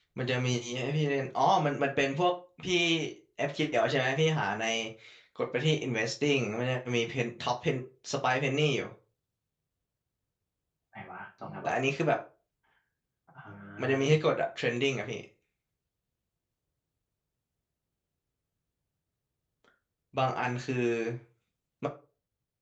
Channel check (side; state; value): both; identical; correlation 1.00